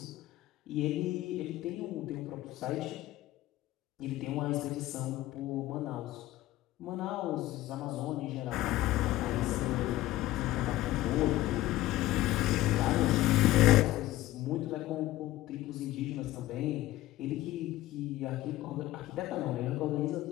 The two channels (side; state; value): right; quieter; 16.0 dB